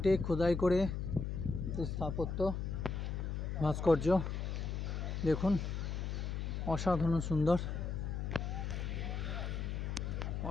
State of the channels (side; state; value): left; noise; hum, 2 dB below the sound